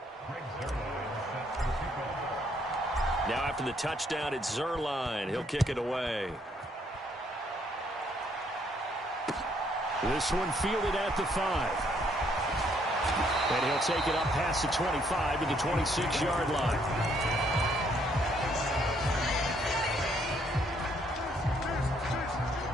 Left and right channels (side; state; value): both; normal; correlation 0.69